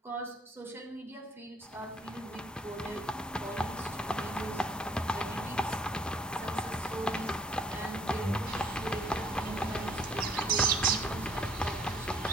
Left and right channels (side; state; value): both; normal; correlation 0.61